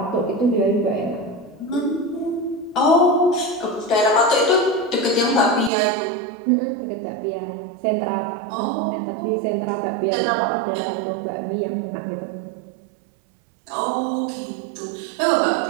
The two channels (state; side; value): drops out; left; at 5.7 s